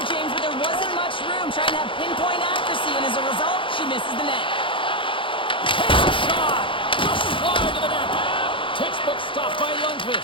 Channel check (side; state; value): right; late; 0.25 ms